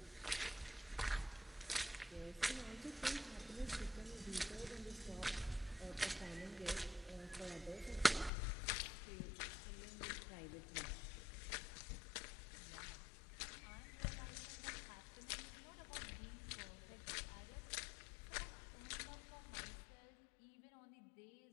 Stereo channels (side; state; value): right; drops out; at 8.3 s